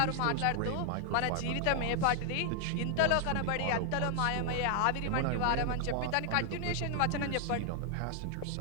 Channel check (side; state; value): both; different; correlation 0.00